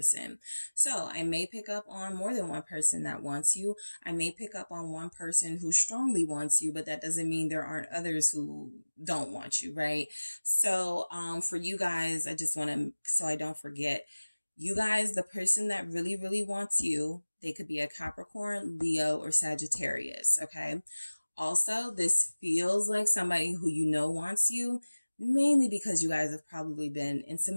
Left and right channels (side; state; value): both; inverted; correlation -1.00